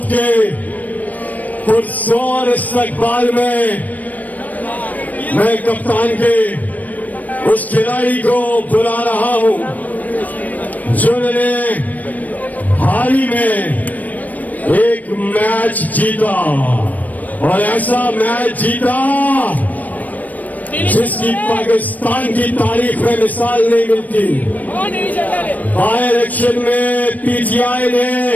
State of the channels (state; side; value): late; right; 0.077 ms